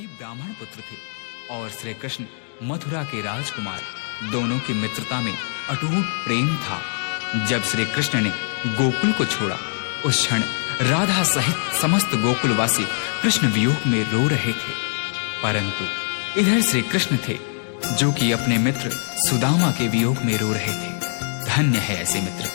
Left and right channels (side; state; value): right; silent; 64 dB below the other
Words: ब्राह्मण पुत्र थे और श्री कृष्ण मथुरा के राजकुमार। दोनों की मित्रता में अटूट प्रेम था। जब श्री कृष्ण ने गोकुल को छोड़ा, उस क्षण राधा सहित समस्त गोकुलवासी कृष्ण वियोग में रो रहे थे। परंतु इधर श्री कृष्ण थे जो कि अपने मित्र सुदामा के वियोग में रो रहे थे। धन्य है ऐसी